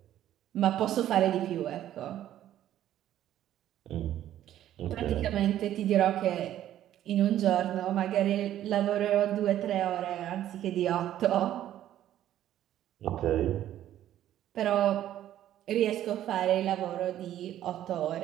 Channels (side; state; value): left; quieter; 12.1 dB